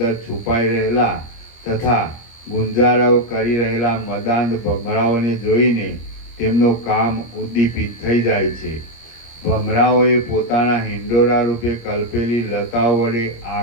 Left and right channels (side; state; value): right; late; 25 ms